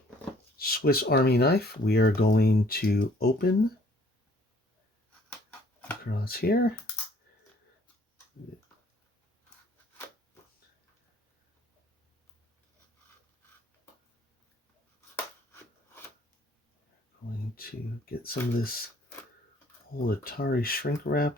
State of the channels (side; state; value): both; normal; correlation 0.59